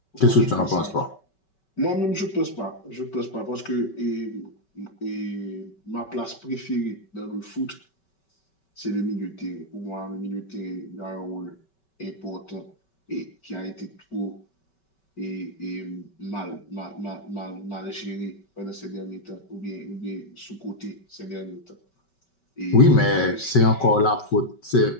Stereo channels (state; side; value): late; right; 5.3 ms